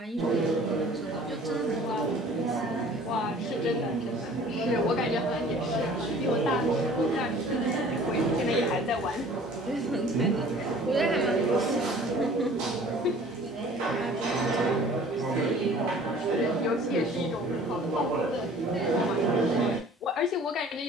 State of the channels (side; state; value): both; normal; correlation 0.49